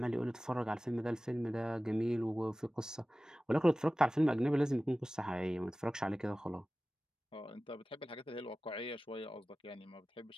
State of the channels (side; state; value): both; normal; correlation 0.97